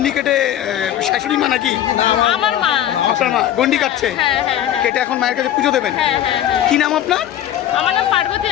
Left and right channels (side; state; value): right; quieter; 11.6 dB